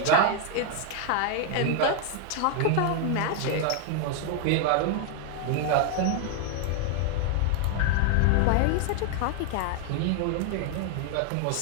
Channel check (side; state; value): both; different; correlation 0.00